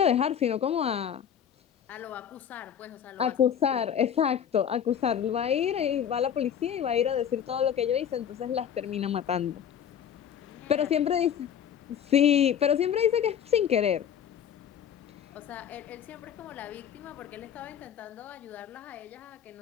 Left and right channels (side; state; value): right; quieter; 8.8 dB